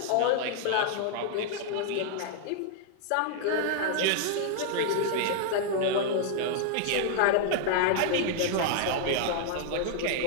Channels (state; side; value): different; both; correlation -0.01